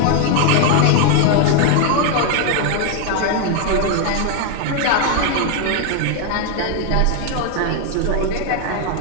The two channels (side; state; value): both; different; correlation 0.01